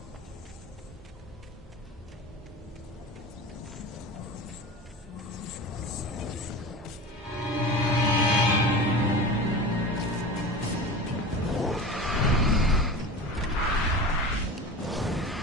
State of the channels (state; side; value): normal; both; correlation 0.32